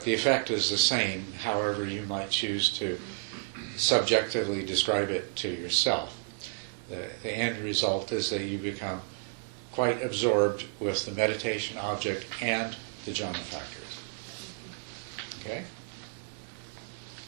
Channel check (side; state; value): left; silent; 57 dB below the other